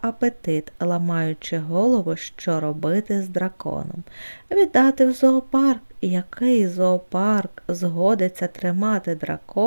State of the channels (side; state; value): both; inverted; correlation -1.00